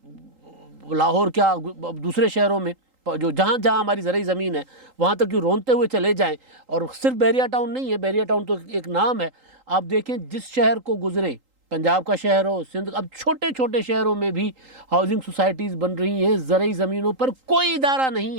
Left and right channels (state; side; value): late; left; 3.8 ms